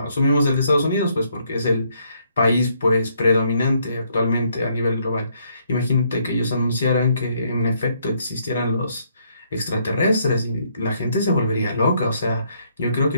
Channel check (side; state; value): both; inverted; correlation -0.71